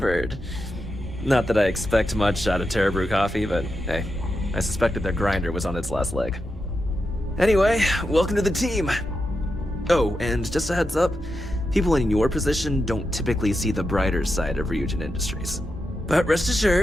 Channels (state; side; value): normal; both; correlation 0.87